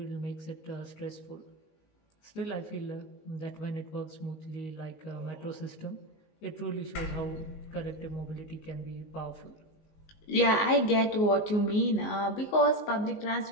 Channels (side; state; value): right; late; 19 ms